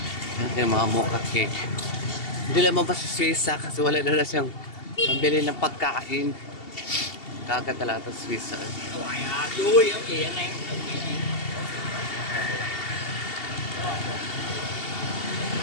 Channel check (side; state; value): right; late; 2.7 ms